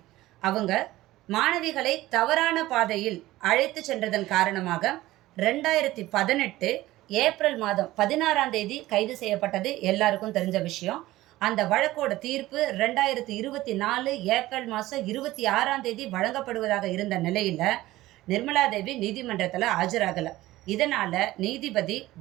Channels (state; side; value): quieter; left; 16.9 dB